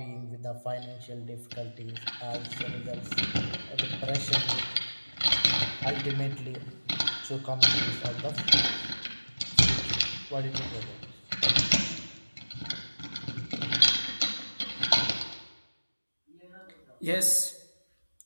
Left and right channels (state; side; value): inverted; both; correlation -1.00